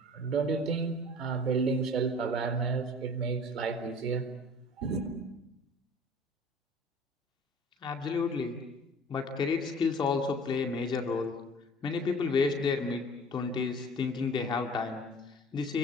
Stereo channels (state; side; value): normal; both; correlation 0.46